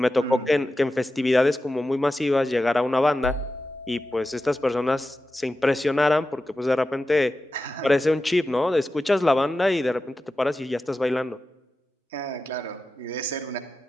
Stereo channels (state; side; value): normal; both; correlation 0.93